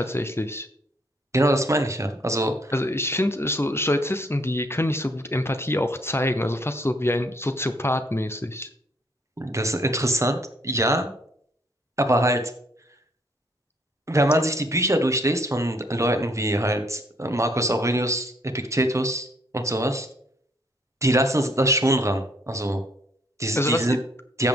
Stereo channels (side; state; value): both; normal; correlation 0.66